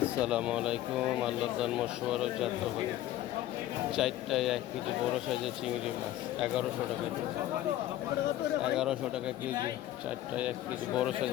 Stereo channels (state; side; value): quieter; right; 13.9 dB